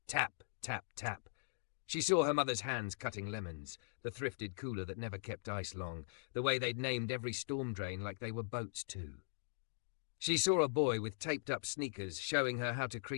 Tap, tap, tap. She saw her mother's hands cutting lemons, the thrifted cooler that never kept ice long, the way they'd named every storm drain like they were boats too. She saw a boy with taped-up sneakers showing her how to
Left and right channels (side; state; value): right; silent; digital silence